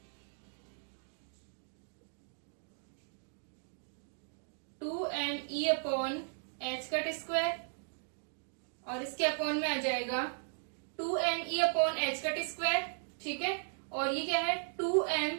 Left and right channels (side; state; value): left; silent; digital silence